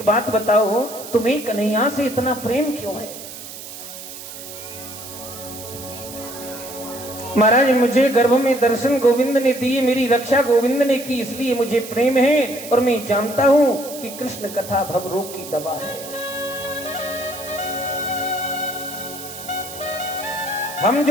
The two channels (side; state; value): right; noise; hiss, 12 dB below the sound